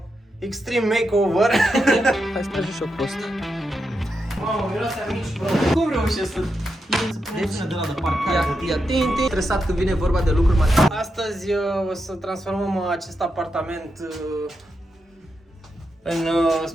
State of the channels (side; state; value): both; normal; correlation 0.86